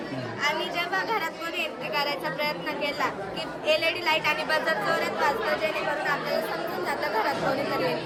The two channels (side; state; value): both; identical; correlation 1.00